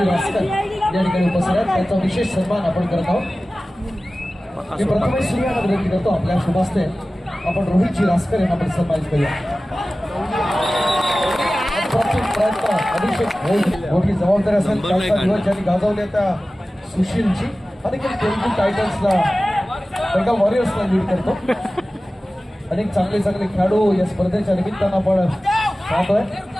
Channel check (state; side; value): normal; both; correlation 0.96